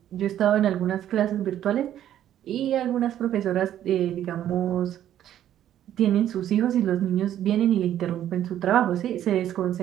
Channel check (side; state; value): left; quieter; 11.3 dB